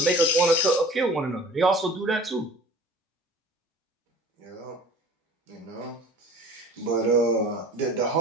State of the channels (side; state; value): both; normal; correlation 0.45